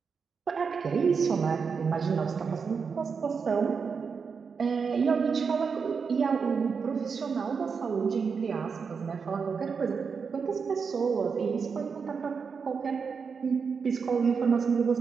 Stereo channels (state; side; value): quieter; left; 5.7 dB